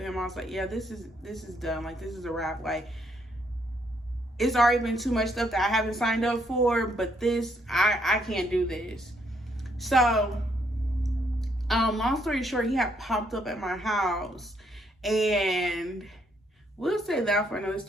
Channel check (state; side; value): normal; both; correlation 0.72